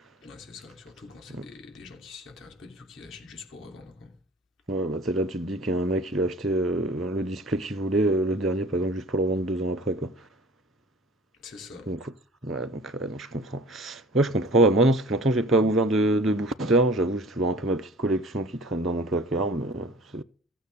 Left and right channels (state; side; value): normal; both; correlation 0.45